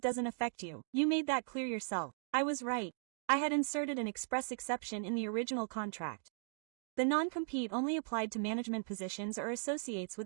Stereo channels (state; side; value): silent; left; digital silence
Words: affect you. You made that clear yourself. I was right. I had inserted an express exception in the original contract. The non-compete only applied to management positions or associates